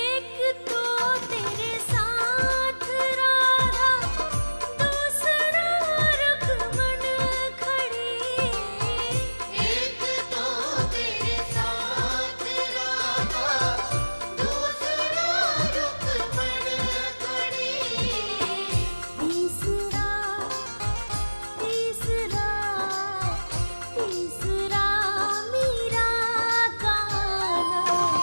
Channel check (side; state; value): both; inverted; correlation -1.00